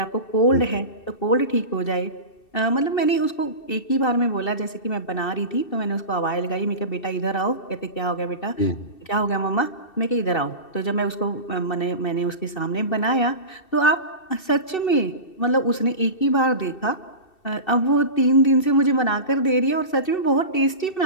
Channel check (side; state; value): right; late; 2.7 ms